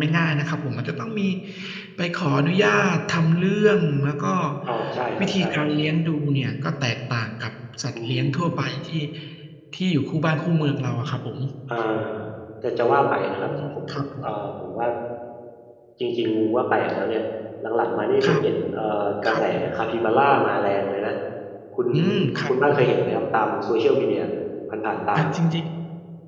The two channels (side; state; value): both; identical; correlation 1.00